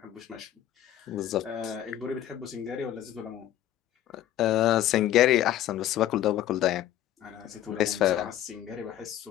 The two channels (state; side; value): quieter; right; 12.2 dB